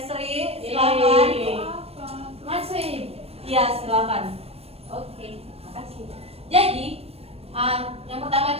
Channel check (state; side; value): late; left; 0.29 ms